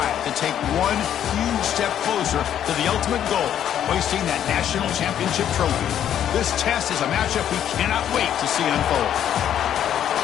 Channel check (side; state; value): right; quieter; 10.2 dB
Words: to take one huge step closer to the ultimate goal, hoisting that national championship trophy. This test is a matchup we cannot wait to see unfold.